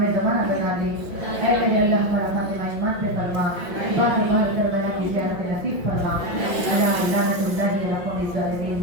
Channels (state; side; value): late; left; 5.9 ms